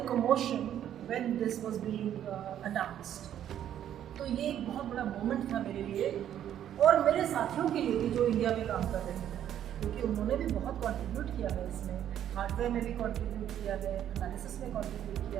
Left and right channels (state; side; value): quieter; left; 10.6 dB